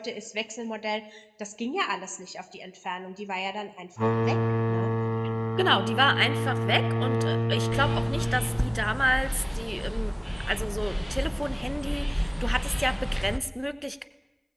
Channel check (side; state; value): both; identical; correlation 1.00